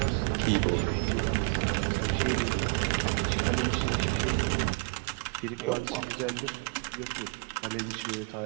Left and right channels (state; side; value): quieter; left; 34.2 dB